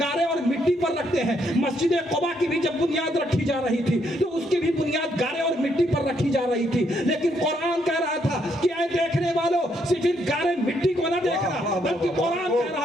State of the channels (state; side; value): normal; both; correlation 0.74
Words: گارے اور مٹی پر رکھتے ہیں. مسجد قباء کی بھی جب بنیاد رکھی جا رہی تھی تو اس کی بھی بنیاد گارے اور مٹی پر رکھی جا رہی تھی. لیکن قرآن کہہ رہا تھا کہ اے دیکھنے والوں صرف گارے مٹی کو نہ دیکھنا، بلکہ قرآن کہہ